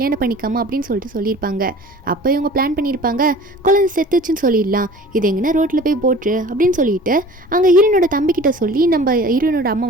பண்ணிக்காம அப்படின்னு சொல்லிட்டு சொல்லியிருப்பாங்க. அப்போ இவங்க பிளான் பண்ணியிருப்பாங்க, குழந்தை செத்துச்சுன்னு சொல்லிடலாம், இது எங்கன்னா ரோட்டில் போய் போட்டு அப்படின்னு சொல்லிட்டு அங்கே ஹீரோனோட தம்பிக்கிட்ட சொல்லி நம்ம ஹீரோனோட அம்மா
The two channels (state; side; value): normal; both; correlation 0.44